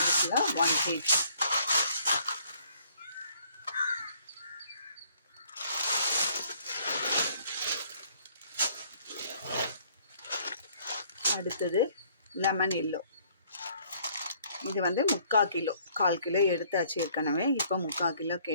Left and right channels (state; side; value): inverted; both; correlation -0.61